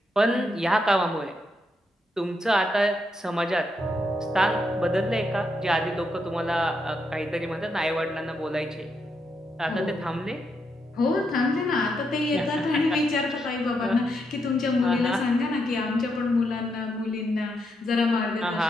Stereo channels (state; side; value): normal; both; correlation 0.80